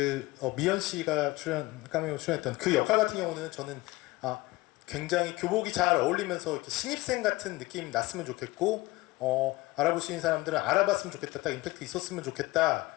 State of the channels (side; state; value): right; quieter; 20.6 dB